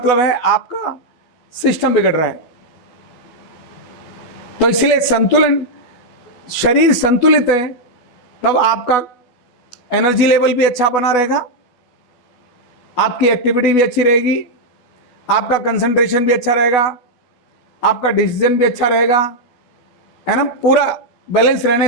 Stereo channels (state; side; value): late; right; 12 ms